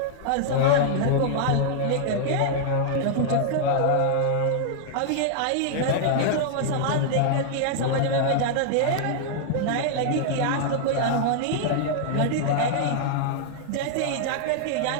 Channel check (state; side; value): different; both; correlation -0.01